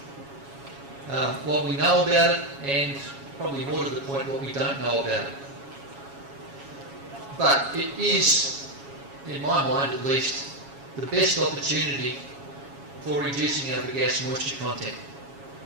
What we know about it, and probably more to the point, what we don't know about it. But it is, in my mind at least, the best opportunity for reducing our bagasse moisture content.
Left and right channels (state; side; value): late; left; 7.2 ms